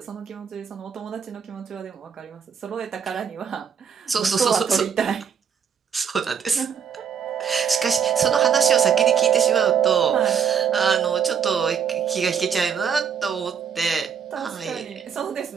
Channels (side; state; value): left; quieter; 7.5 dB